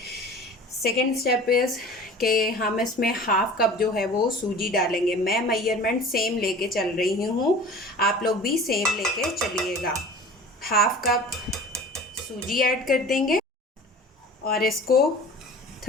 सेकेंड स्टेप इज़ कि हम इसमें हाफ़ कप जो है वो सूजी डालेंगे। मैं मेजरमेंट सेम लेके चल रही हूँ, आप लोग भी सेम लेके चलिएगा। हाफ़ कप सूजी ऐड कर देंगे और इसको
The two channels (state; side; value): normal; both; correlation 0.41